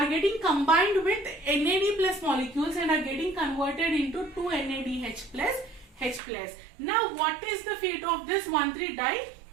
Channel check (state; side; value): drops out; left; at 6.2 s